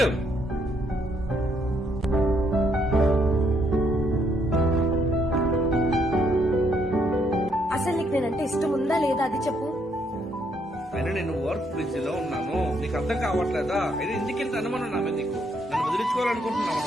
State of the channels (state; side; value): normal; both; correlation 0.72